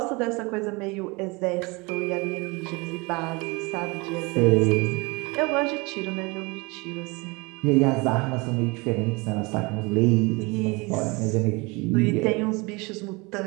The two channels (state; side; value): quieter; left; 26.4 dB